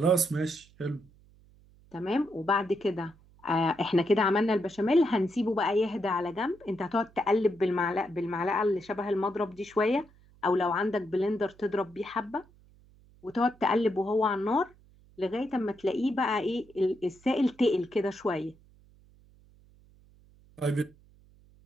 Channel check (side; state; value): right; noise; hum, 28 dB below the sound